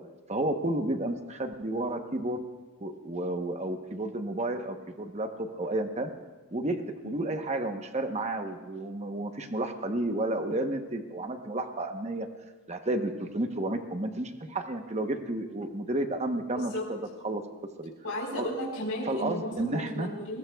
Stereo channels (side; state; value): both; normal; correlation 0.39